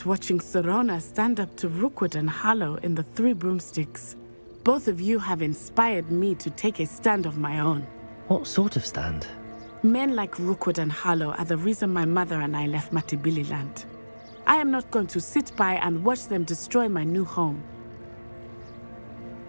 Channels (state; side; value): inverted; both; correlation -1.00